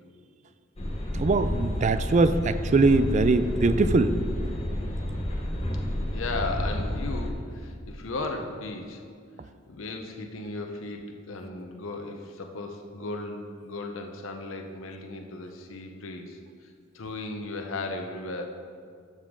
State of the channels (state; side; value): normal; both; correlation 0.62